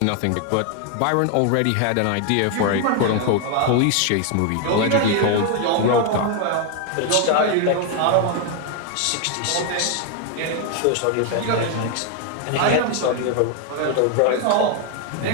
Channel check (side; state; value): both; different; correlation 0.01